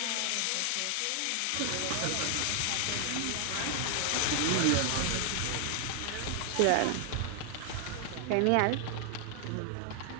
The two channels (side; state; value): both; different; correlation 0.00